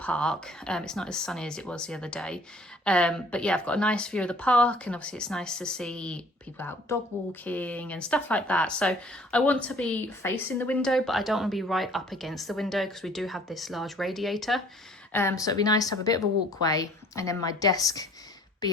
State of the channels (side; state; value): both; normal; correlation 0.55